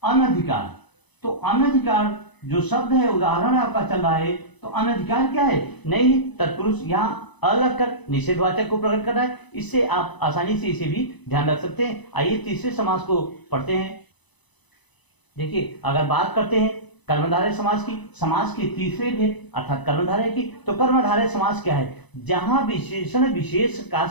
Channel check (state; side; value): late; right; 1.0 ms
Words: अनधिकार, तो अनधिकार जो शब्द है, उदाहरण आपका चल रहा है, तो अनधिकार क्या है? नई तत्पुरुष, यहाँ अलग कर निषेधवाचक को प्रकट कर रहा है। इससे आप आसानी से इसे भी ध्यान रख सकते हैं। आइए तीसरे समास को पढ़ते हैं। देखिए, अगर बात करते हैं कर्मधारय समास की, समास के तीसरे भेद अर्थात कर्मधारय की, तो कर्मधारय समास क्या है? जहां विशेषण विशेष का